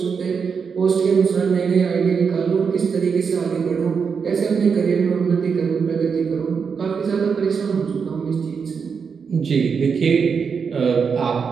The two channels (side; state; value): left; quieter; 6.0 dB